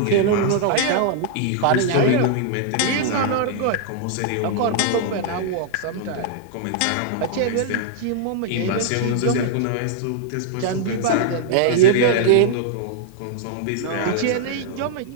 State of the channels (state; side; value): different; both; correlation -0.01